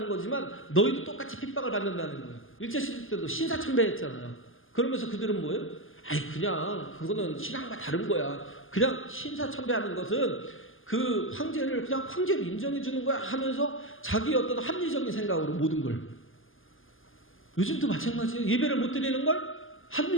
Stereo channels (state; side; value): late; right; 0.59 ms